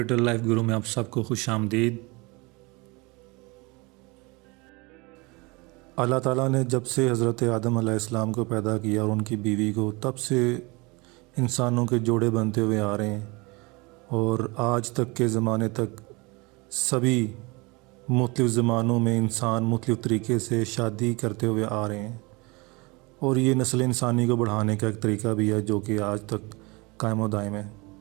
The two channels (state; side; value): quieter; left; 26.2 dB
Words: لائف گرو میں آپ سب کو خوش آمدید۔ اللہ تعالیٰ نے جب سے حضرت آدم علیہ السلام کو پیدا کیا اور ان کی بیوی کو، تب سے انسانوں کے جوڑے بنتے ہوئے آ رہے ہیں اور آج تک کے زمانے تک سبھی مختلف زمانوں میں انسان مختلف طریقے سے شادی کرتے ہوئے آ رہے ہیں، اور یہ نسل انسانی کو بڑھانے کا ایک طریقہ بھی ہے جو کہ آج تک قائم و دائم ہے۔